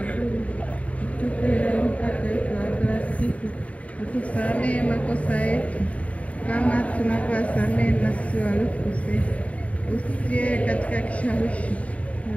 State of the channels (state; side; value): late; right; 0.067 ms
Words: tupe leo mkate wetu wa kila siku, utusamehe makosa yetu kama tunavyowasamehe na sisi waliokosea, usitie katika kishawishi,